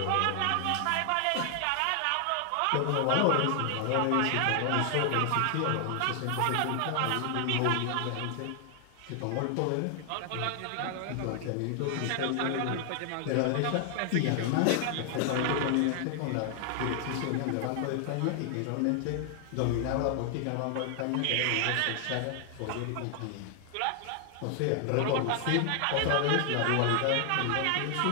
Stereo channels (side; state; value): both; different; correlation 0.00